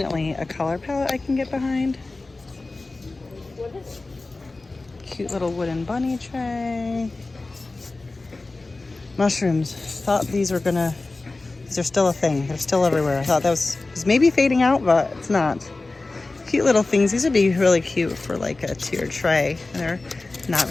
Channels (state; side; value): quieter; right; 3.3 dB